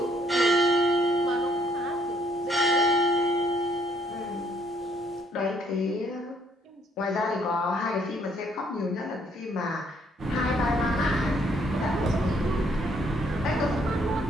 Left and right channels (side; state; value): both; normal; correlation 0.67